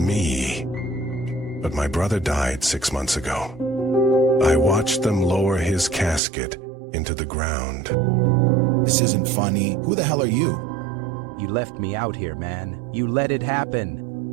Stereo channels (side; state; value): left; drops out; at 6.2 s